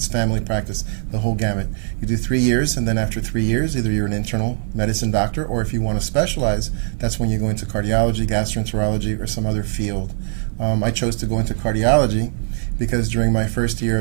family practice, the whole gamut. You do 3 years, and then after 3 years, either you're an internal medicine doctor, or if you want to specialize, that's when you go into cardiology, gastroenterology, or some other field. I chose to go into cardiology because during my first year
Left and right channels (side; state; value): left; silent; 56 dB below the other